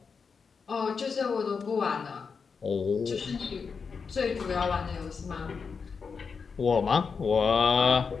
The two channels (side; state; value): right; quieter; 5.5 dB